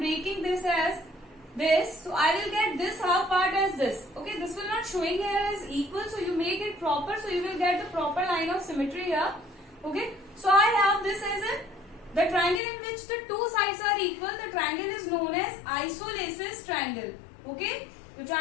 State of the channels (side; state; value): right; drops out; at 12.6 s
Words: this as this, so I will get this half part as this. Okay, this will not showing here as equal, so you make it proper, so you will get the proper line of symmetry here. Okay, so I have this as the triangle in which the two sides are equal. The triangle is known as isosceles triangle. Okay, the